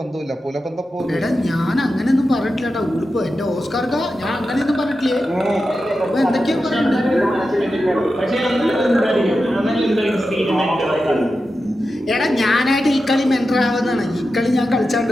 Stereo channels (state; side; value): normal; both; correlation 0.91